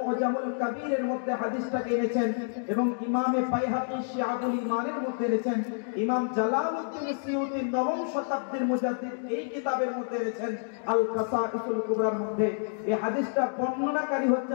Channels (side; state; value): right; silent; digital silence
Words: কবীরের মধ্যে হাদিসটা এনেছেন, এবং ইমামে বাইহাকী শিআবুল ঈমানের মধ্যে এনেছেন, ইমাম জালালউদ্দিন সিয়ুতী নবম শতাব্দীর মুজাদ্দিদ এই কিতাবের মধ্যে এনেছেন আল কাসাঈসুল কুবরার মধ্যে। এই হাদিসটা বর্ণনাকারী